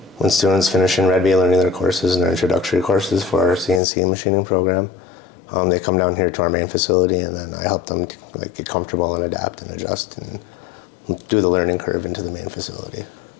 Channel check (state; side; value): drops out; right; at 3.8 s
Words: when students finish in Red Bee learning their courses and their introductory courses for our CNC machining program. They come down here to our main facility, and then I help them like get comfortable and adapt and adjust and do the learning curve into the main facility.